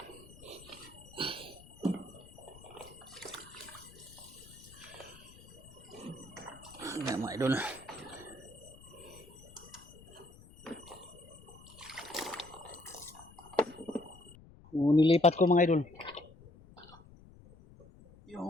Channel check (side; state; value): left; noise; rumble, 21 dB below the sound